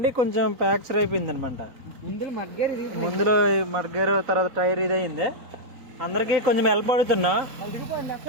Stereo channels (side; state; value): left; late; 4.1 ms